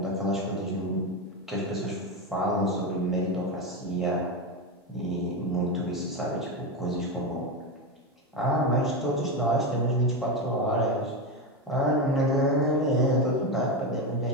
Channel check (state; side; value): normal; both; correlation 0.14